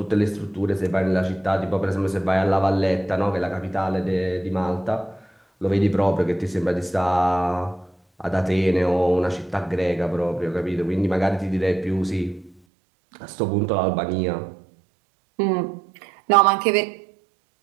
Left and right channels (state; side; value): drops out; left; at 12.5 s